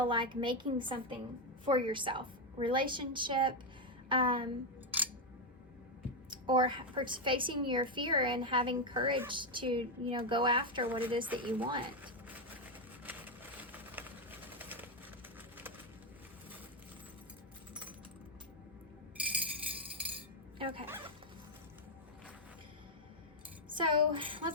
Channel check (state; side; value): normal; both; correlation 0.04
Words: like making something for yourself. Relationship, or facing your fear and having courage to, go after what it is that you want. Okay. So